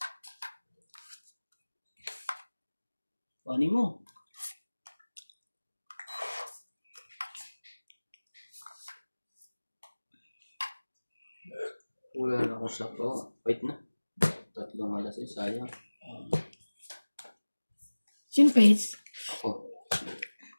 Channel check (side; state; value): both; inverted; correlation -1.00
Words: Paano mo? Wala na akong sakto. Wait na. 3 alas ay sayang. Sinpace. Oh.